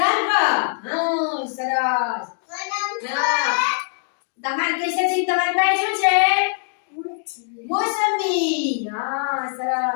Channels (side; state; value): right; silent; digital silence